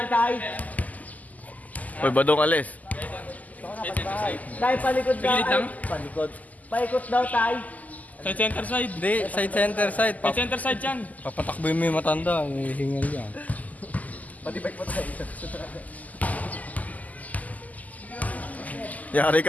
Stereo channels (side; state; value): right; late; 0.078 ms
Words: Tay. Uy, badong alis. Tay, palikod daw. Pilit lang? Palikod. Paikot daw, Tay. Side center side. Hindi, side center side. Side center side yan. Papatakbo yung may matanda, may hingal yan. Pati bike mo, Tay. Yari